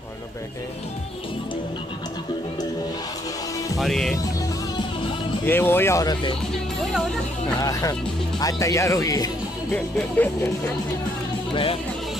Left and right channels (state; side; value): normal; both; correlation 0.70